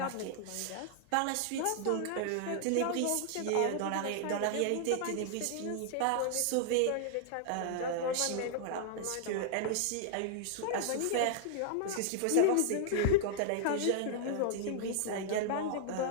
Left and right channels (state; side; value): different; both; correlation -0.01